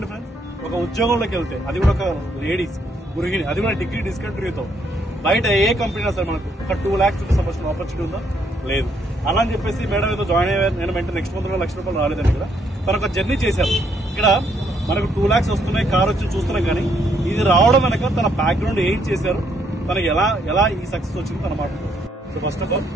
ఫ్రెండ్స్, ఒక ఉద్యోగంలోకి వెళ్తే అది కూడా ఒక లేడీస్ గృహిణి, అది కూడా డిగ్రీ డిస్కంటిన్యూతో బయట ఏ కంపెనీ సరే మనకు ఒక 2 lakhs రూపీస్ సంపాదించిన ఆపర్చునిటీ ఉందా? లేదు. అలా అని చెప్పేసి మేడం ఏదో జాయిన్ అయ్యారు, నేను వెంటనే నెక్స్ట్ మంత్ కూడా 1 లక్ష రూపాయలు రాలేదండి. ఇక్కడ తను ఒక జర్నీ చేశారు. ఇక్కడ మనకు 2 lakhs వస్తున్నాయి, కార్ వచ్చి చూస్తున్నాం. కానీ ఇది రావడం వెనక తన బ్యాక్గ్రౌండ్ ఏం చేశారు, తనకి ఎలా ఈ సక్సెస్ వచ్చింది తన మాట్లాడుతుంది. సో ఫస్ట్ ఆఫ్ ఆల్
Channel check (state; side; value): normal; both; correlation 0.72